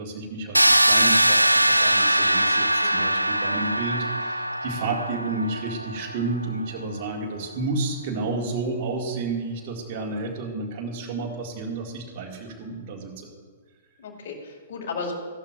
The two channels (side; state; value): both; inverted; correlation -0.79